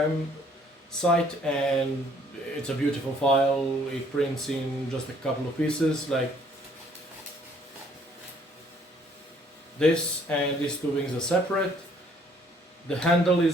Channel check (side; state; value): both; normal; correlation 0.62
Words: site, and it's a beautiful file. It prints in just a couple of pieces like this, and these two wings are separate. The handle